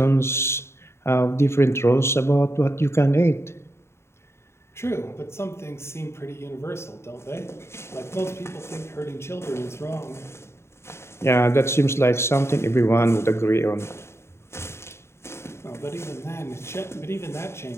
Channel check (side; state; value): right; late; 0.13 ms